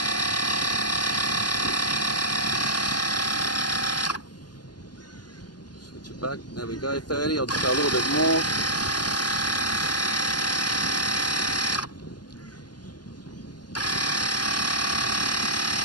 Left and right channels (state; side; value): late; right; 0.70 ms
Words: Switch it back. There we go, 30. I'll just go a little bit more.